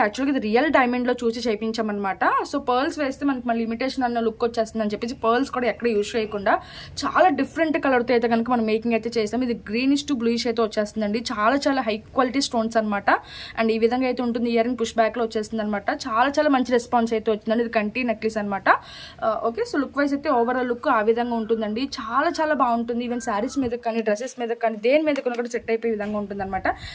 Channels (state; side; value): identical; both; correlation 1.00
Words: ఇది రియల్ డైమండ్లో చూసి చేయించామన్నమాట. సో పర్ల్స్ వేస్తే మనకి మళ్ళీ లిమిటేషన్ అన్న లుక్ వచ్చేస్తుంది అని చెప్పేసి పర్ల్స్ కూడా ఎక్కడ యూజ్ చేయకుండా చాలా డిఫరెంట్ కలర్తో అయితే కనుక మనం మేకింగ్ అయితే చేస్తాం. ఇది గ్రీనిష్ టు బ్లూయిష్ అయితే వచ్చేస్తుందండి. చాలా హై క్వాలిటీ స్టోన్స్ అనమాట. అండ్ ఈ విధంగా అయితే ఉంటుంది. ఇయర్ రింగ్ పుష్ బ్యాక్లో వచ్చేస్తుంది అనమాట. చాలా మంచి రెస్పాన్స్ అయితే వచ్చిందండి. ఇది కంటి నెక్లెస్ అనమాట. ఓకే, సో లుక్ వైజ్ అయితే ఓవరాల్ లుక్ ఆ విధంగా ఉంటుందండి. చాలా బాగుంటుంది. ఈవెన్ శారీస్ మీద కానీ డ్రెస్సెస్ మీద కానీ దేని మీద కూడా సెట్ అయిపోయే విధంగా ఉంటుంది అనమాట.